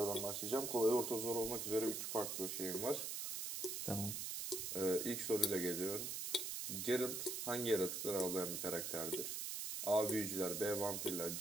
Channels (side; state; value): right; noise; hiss, 3 dB below the sound